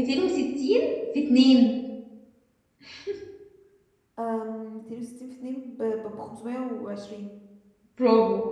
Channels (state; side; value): identical; both; correlation 1.00